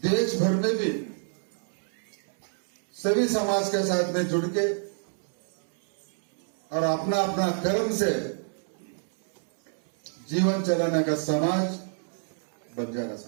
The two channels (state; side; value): silent; left; 60 dB below the other